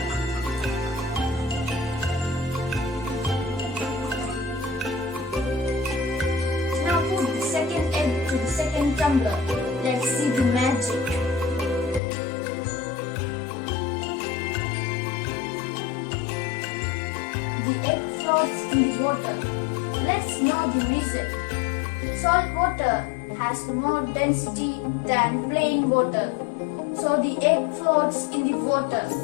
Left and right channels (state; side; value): drops out; right; at 12.0 s